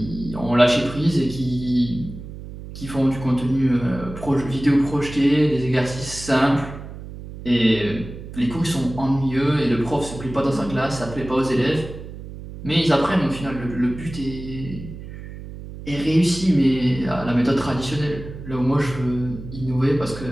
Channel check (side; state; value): right; noise; hum, 12 dB below the sound